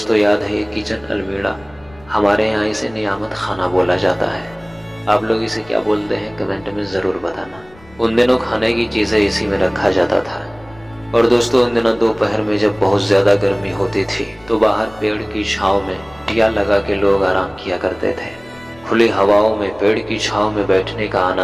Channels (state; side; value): noise; left; rumble, 25 dB below the sound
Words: याद है ये किचन अलमीरा, हमारे यहाँ इसे नियामत खाना बोला जाता है। आप लोग इसे क्या बोलते हैं कमेंट में ज़रूर बताना। उन दिनों खाने की चीज़ें इसी में रखा जाता था। और दोस्तों उन दिनों दोपहर में जब बहुत ज़्यादा गर्मी होती थी तो बाहर पेड़ की छांव में दिया लगा के लोग आराम किया करते थे। खुली हवाओं में पेड़ की छांव में बैठने का